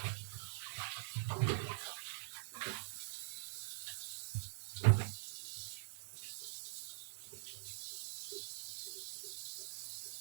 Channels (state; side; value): silent; left; digital silence